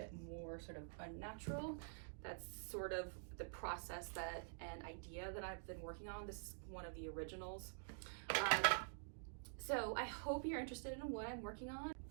more sort of unnatural. That's sort of the process that and idea that I've been working on. This is one of the originals. So I hope you're interested in what I'm working on.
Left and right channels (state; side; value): silent; left; digital silence